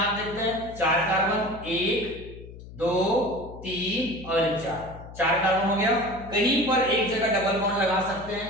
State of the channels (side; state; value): left; noise; hum, 15 dB below the sound